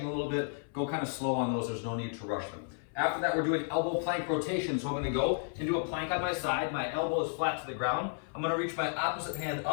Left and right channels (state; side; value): silent; right; 56 dB below the other